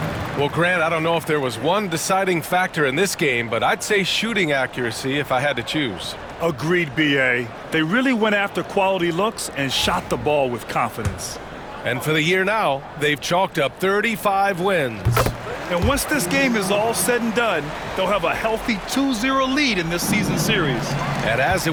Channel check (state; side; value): identical; both; correlation 1.00